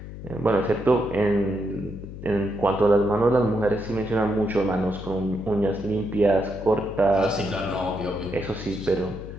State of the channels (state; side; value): noise; left; hum, 12 dB below the sound